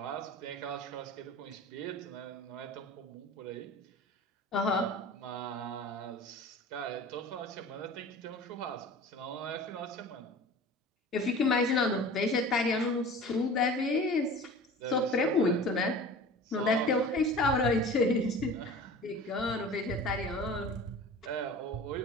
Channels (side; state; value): both; normal; correlation 0.40